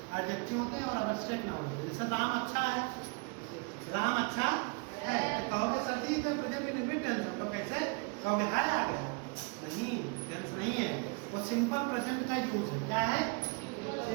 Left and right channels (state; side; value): quieter; left; 33.2 dB